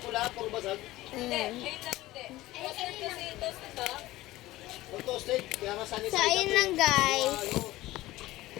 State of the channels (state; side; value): quieter; right; 17.3 dB